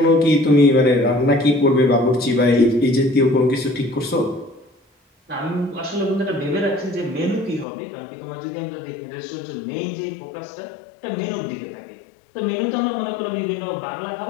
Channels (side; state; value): right; drops out; at 7.7 s